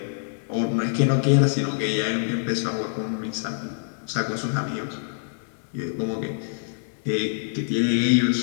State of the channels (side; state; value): right; silent; digital silence